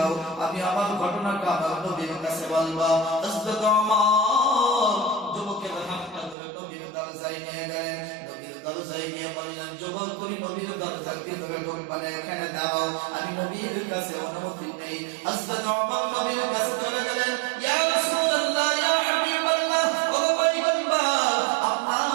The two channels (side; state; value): left; drops out; at 6.4 s